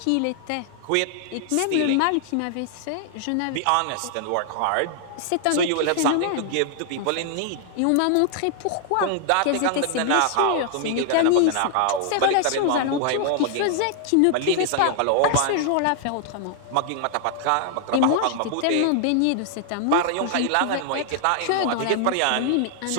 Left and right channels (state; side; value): different; both; correlation 0.00